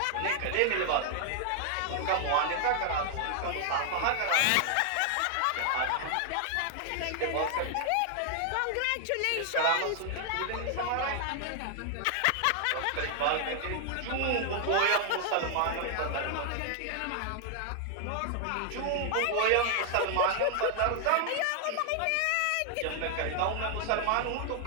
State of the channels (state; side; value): different; both; correlation 0.00